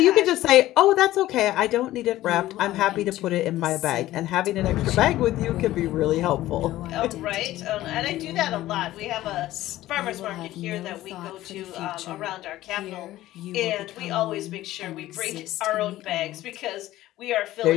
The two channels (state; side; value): quieter; right; 15.3 dB